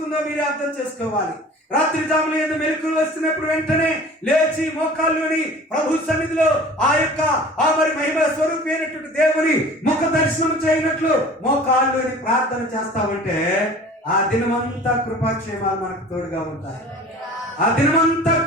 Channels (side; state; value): both; normal; correlation 0.43